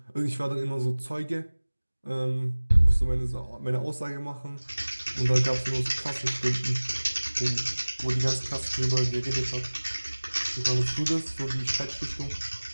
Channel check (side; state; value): both; inverted; correlation -1.00